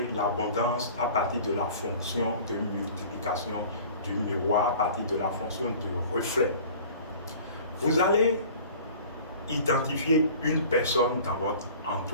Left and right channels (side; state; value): both; inverted; correlation -0.45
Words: l'abondance à partir de la fonction de multiplication du miroir, à partir de la fonction de reflet. Vous allez identifier une personne dans votre